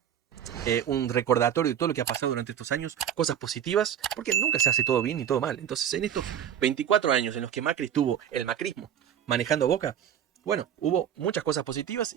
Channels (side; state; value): left; quieter; 9.4 dB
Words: un recordatorio de todo lo que ha pasado durante estos años, cosas positivas, porque nunca se hace todo bien ni todo mal. Entonces, en estos 24 años en los que Macri estuvo el macrismo manejando Boca, bueno, hubo muchas cosas positivas